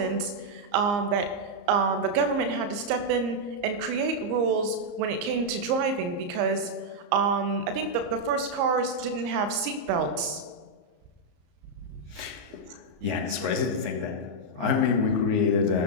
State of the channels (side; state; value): left; late; 34 ms